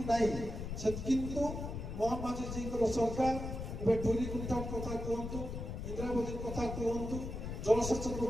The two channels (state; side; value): noise; left; rumble, 6 dB below the sound